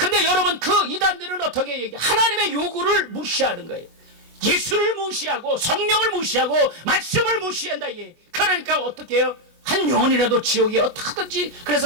여러분, 그 이단들은 어떻게 얘기해? 하나님의 요구를 무시하는 거예요. 예수를 무시하고 성령을 무시하고 말씀을 무시한다. 그러니까 어떻게 해요? 한 영혼이라도 지옥에 어떻게든지.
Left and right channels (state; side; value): late; left; 24 ms